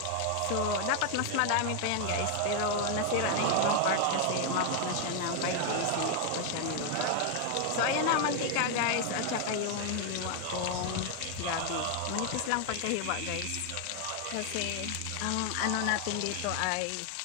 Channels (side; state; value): both; different; correlation 0.00